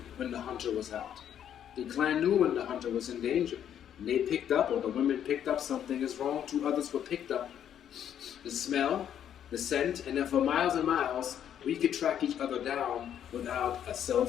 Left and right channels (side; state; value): right; quieter; 9.7 dB